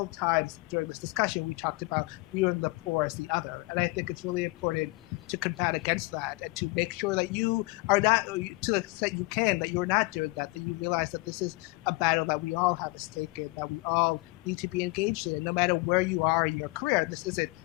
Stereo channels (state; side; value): quieter; right; 25.2 dB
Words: times during this discussion, we talked about viewing the poor as the other. And I think it's really important to combat against that and to make sure that you are not, to the extent you can, that you're not doing that you realize that this is a battle that we all have a stake in, that we all need to be engaged in, no matter where you are in your career. This isn't